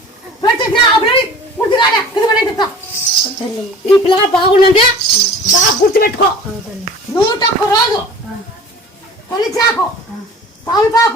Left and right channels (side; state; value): both; normal; correlation 0.43